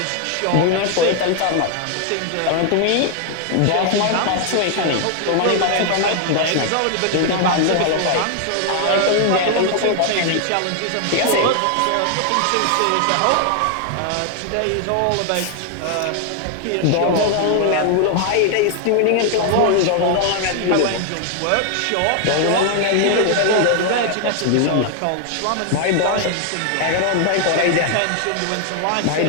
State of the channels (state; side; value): different; both; correlation 0.00